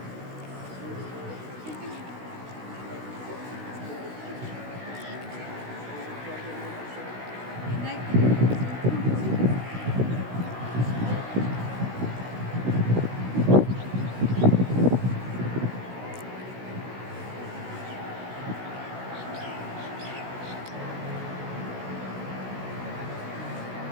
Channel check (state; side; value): late; left; 16 ms